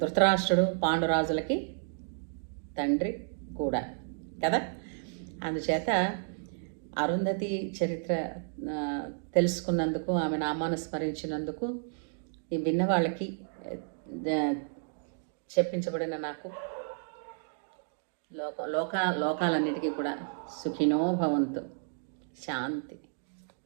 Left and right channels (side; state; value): left; silent; digital silence